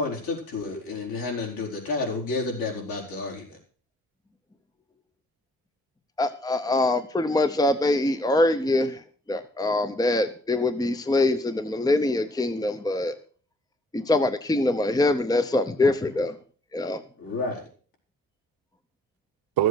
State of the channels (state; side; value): normal; both; correlation 0.63